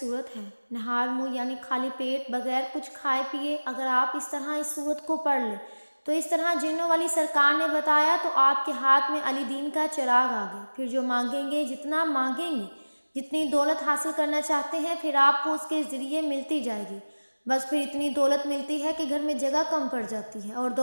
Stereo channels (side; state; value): both; inverted; correlation -1.00